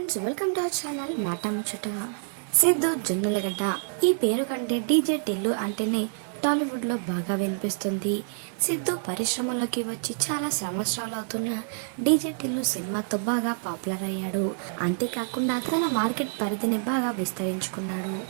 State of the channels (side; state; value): left; silent; digital silence